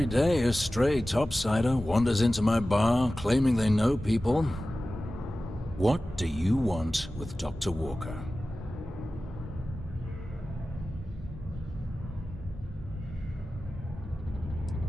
day a stray topsider wanders into my bar claiming they know people. What do you want with Dr. Walker?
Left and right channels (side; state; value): both; normal; correlation 0.95